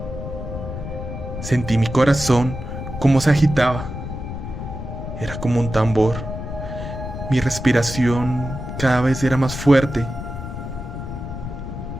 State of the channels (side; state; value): left; noise; rumble, 7 dB below the sound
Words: Sentí mi corazón como se agitaba. Era como un tambor. Mi respiración cada vez era más fuerte